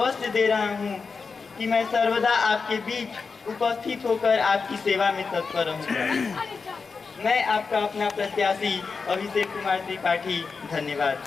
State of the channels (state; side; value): quieter; right; 4.9 dB